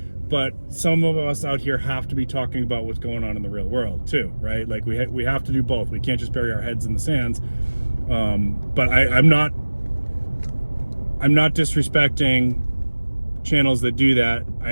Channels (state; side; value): inverted; both; correlation -1.00